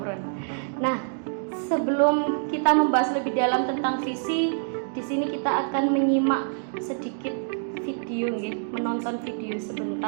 Nah, sebelum kita membahas lebih dalam tentang visi, di sini kita akan menyimak sedikit video nggih, menonton video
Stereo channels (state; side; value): silent; left; digital silence